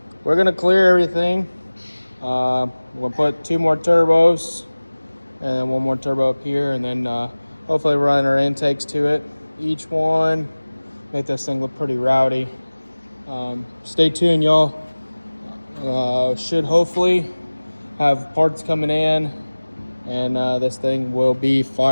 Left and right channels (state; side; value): inverted; both; correlation -1.00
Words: gonna clear everything. We'll put 2 more turbos and then 1 more turbo up here, and then hopefully run our intakes to it. Each one, make this thing look pretty rowdy. Stay tuned, y'all. Should hopefully have parts coming in, and this thing will be